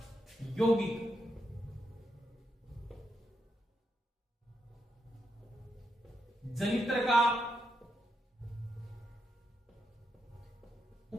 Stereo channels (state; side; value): normal; both; correlation 0.83